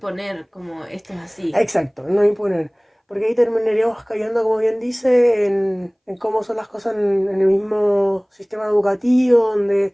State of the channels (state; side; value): identical; both; correlation 1.00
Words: como esto es así. Exacto, no imponer. Porque ahí terminaríamos cayendo, como bien dice, en cómo son las cosas en el mismo sistema educativo, donde